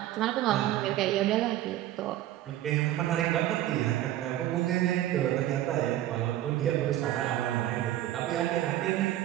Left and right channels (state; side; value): quieter; left; 13.6 dB